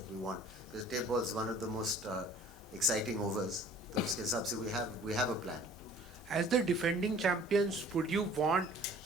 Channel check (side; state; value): both; normal; correlation 0.50